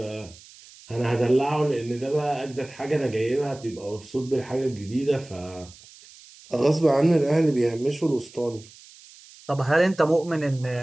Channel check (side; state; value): right; noise; hiss, 22 dB below the sound